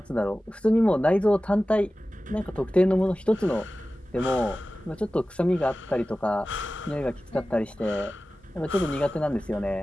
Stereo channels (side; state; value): both; normal; correlation 0.96